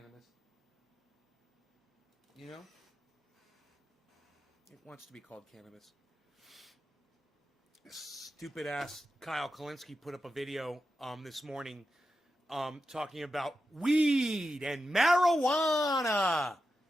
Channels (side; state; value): both; normal; correlation 0.89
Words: You know? It wants to be called cannabis. Stupid ass Kyle Kalinske put up a video this morning talking about weed and marijuana.